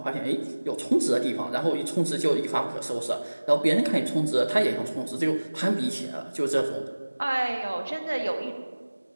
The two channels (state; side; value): inverted; both; correlation -1.00